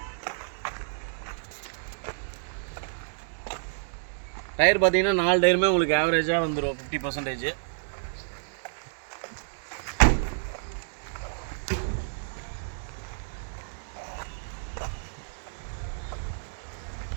டயர் பார்த்தீங்கன்னா 4 டயருமே உங்களுக்கு ஆவரேஜாக வந்துடும் 50%.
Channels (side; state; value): left; silent; digital silence